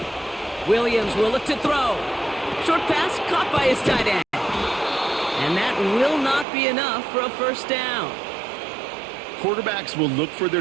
Williams will look to throw. Short pass caught by his tight end. And that will not be enough for a first down. Quarterbacks will look for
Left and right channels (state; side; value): drops out; left; at 6.5 s